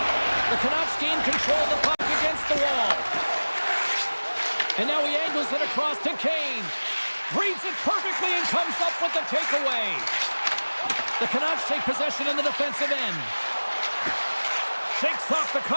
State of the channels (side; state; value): both; inverted; correlation -1.00